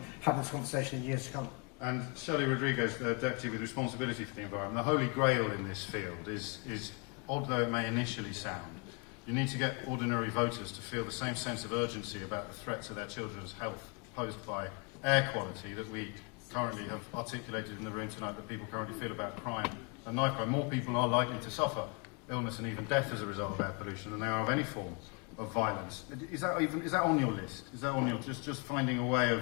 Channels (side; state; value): right; quieter; 32.2 dB